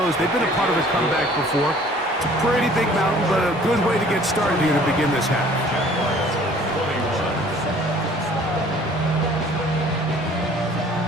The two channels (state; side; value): normal; both; correlation 0.53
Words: they've been a part of a comeback before. It's a pretty big mountain, but a good way to get started here to begin this half.